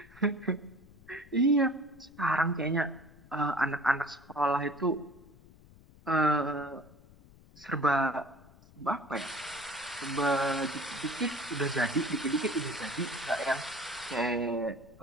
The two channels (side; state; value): left; noise; rumble, 24 dB below the sound